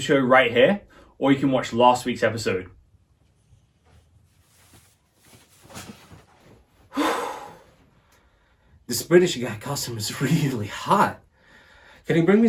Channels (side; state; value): both; identical; correlation 1.00